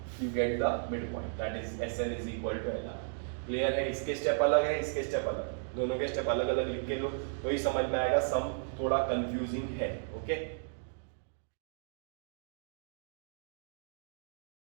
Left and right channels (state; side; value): silent; left; digital silence